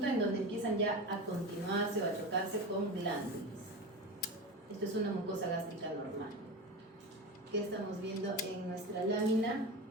en donde empiezan ya a continuarse o a chocarse con glándulas. Esto es una mucosa gástrica normal. ¿Qué estamos viendo en nuestra lámina?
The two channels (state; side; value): normal; both; correlation 0.25